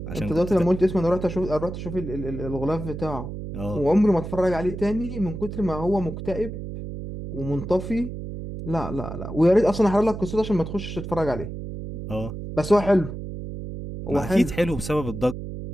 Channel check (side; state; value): right; noise; hum, 8 dB below the sound